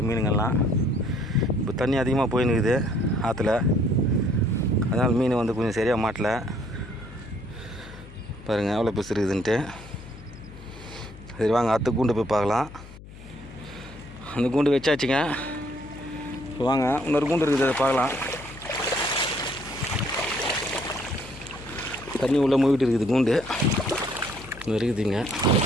மீனுங்கள்லாம். இப்போ தண்ணி அதிகமாக போயின்னுக்குது ஆற்றுல, அதனால் மீன் வந்து கொஞ்சம் சரியாக மாட்டலை. பாருங்கள் எவ்வளோ பெருசு இருக்குதுன்ட்டு. சரி வாங்க அடுத்த கூண்டு போய் பார்க்கலாம். அந்த கூண்டு வச்சாச்சுங்க. இப்போ வாங்க இன்னொரு கூண்டு இருக்குது, அதை பார்க்கலாம். தண்ணி உள்ளே மூவிட்டு இருக்குது கூண்டு, இன்னும் இருக்குதுங்க.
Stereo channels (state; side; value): noise; left; hum, 17 dB below the sound